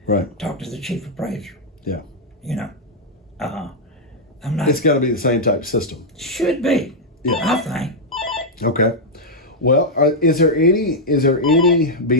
Right. talk to the chief appraiser. Yeah. I'm not. It's got to be the same type of system. Should be. Yeah. I think. Okay. Well, is there any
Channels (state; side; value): normal; both; correlation -0.04